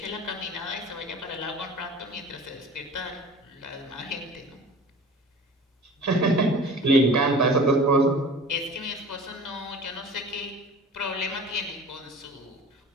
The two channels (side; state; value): both; normal; correlation 0.41